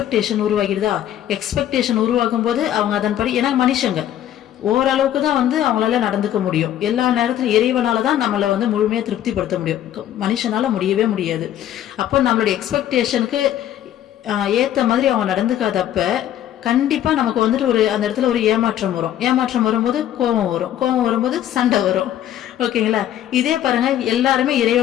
உருவாகிடுதா? எக்ஸ்பெக்டேஷன் உருவாகும் போது அவங்க அதன்படி, ஏன்னா மனுஷங்க ஓரளவுக்கு தான் அவங்களால நடந்துக்க முடியும். எல்லா நேரத்திலும் இறைவனால தான் நம்மளை முழுமையா திருப்திப்படுத்த முடியும், மனுஷனால முடியவே முடியாது. அப்போ நம்மளுடைய எக்ஸ்பெக்டேஷனுக்கு ஏத்த மாதிரி அவங்க நடந்துக்காதப்ப கண்டிப்பா நமக்கு ஒரு அந்த இடத்துல ஒரு ஏமாற்றம் வரும். ஏமாற்றம் வரும்போது கோபம் வரும், கோபம் வரும்போது சண்டை வரும். ஓகேங்களா? இதே பாருங்க, எல்லாருமே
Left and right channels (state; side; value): quieter; right; 11.5 dB